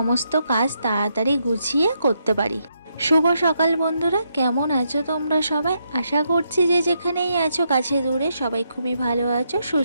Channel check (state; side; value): inverted; both; correlation -0.79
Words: কাজ তাড়াতাড়ি গুছিয়ে করতে পারি। শুভ সকাল বন্ধুরা, কেমন আছো তোমরা সবাই? আশা করছি যে যেখানেই আছো কাছে দূরে সবাই খুবই ভালো আছো,